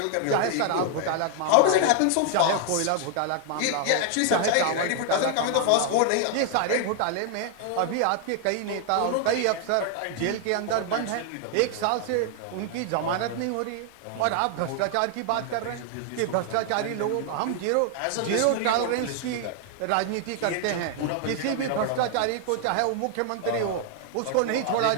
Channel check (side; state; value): both; different; correlation 0.00